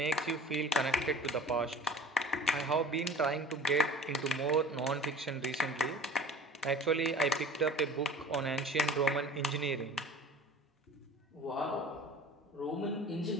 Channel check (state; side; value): normal; both; correlation 0.42